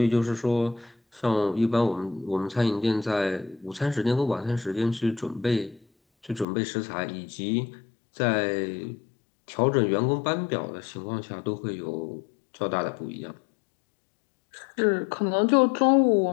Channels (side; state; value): right; drops out; at 6.5 s